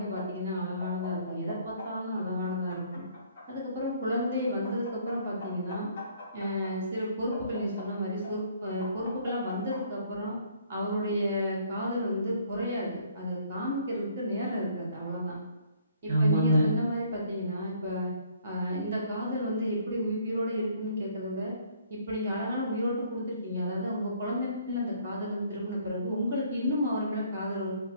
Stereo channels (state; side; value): inverted; both; correlation -0.61